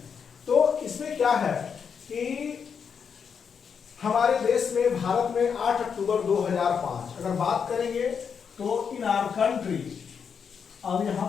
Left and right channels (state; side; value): quieter; right; 6.7 dB